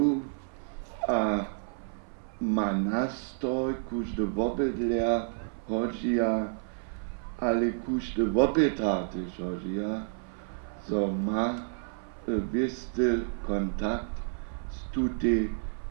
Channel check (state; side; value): silent; left; 56 dB below the other